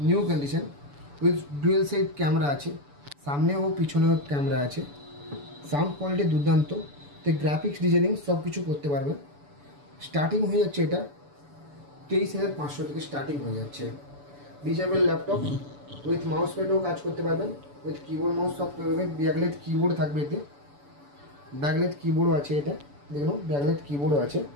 new condition, with dual side camera আছে, সামনে ও পিছনেও ক্যামেরা আছে। সাউন্ড কোয়ালিটি দুর্দান্ত, তো গ্রাফিক্স ডিজাইনিং সব কিছু করতে পারবেন। স্টার্টিং হয়ে যাচ্ছে এটা 23,500 থেকে স্টার্টিং হয়ে যাচ্ছে। ডিচেবল ল্যাপটপ উইথ মাউস প্যাডও কাজ করতে পারবেন, উইথ কিবোর্ড মাউস সব করবেন। ব্যাকলাইট কিবোর্ড থাকবে এতে, ব্যাকলাইট কিবোর্ডও আছে। এটা দেখুন ব্যাকলাইট কিবোর্ডও আছে,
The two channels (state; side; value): late; left; 6.9 ms